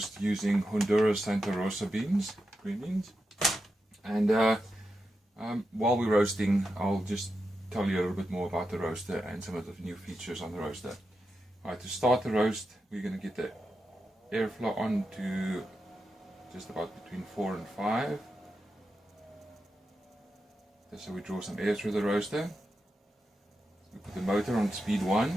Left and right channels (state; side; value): normal; both; correlation 0.88